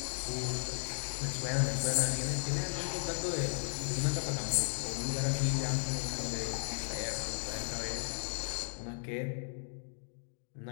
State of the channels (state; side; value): silent; right; digital silence